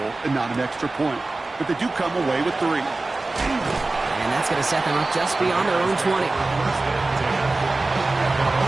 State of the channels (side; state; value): left; quieter; 3.2 dB